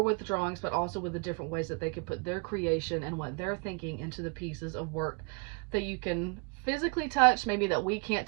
with the drawings, but also with the different ways that they can put their creation and what they're thinking into the pieces of work that you can physically touch, maybe that we can't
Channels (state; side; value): quieter; left; 34.1 dB